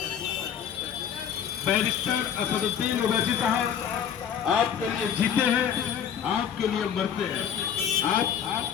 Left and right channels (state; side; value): quieter; right; 8.5 dB